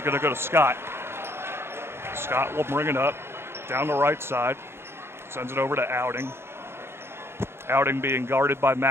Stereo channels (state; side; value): late; left; 0.12 ms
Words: going to go to Scott. Scott will bring it up down the right side, sends it over to Outing. Outing being guarded by